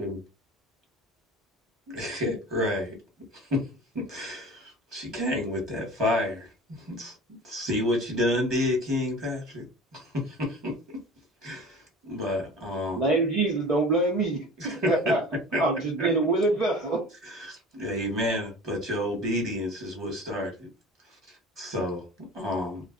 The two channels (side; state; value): both; normal; correlation 0.40